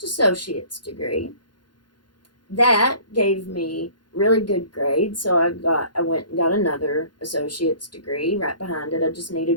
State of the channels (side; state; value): right; late; 0.71 ms